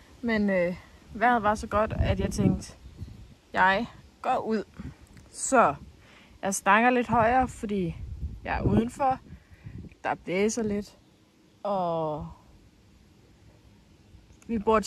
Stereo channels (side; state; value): both; identical; correlation 1.00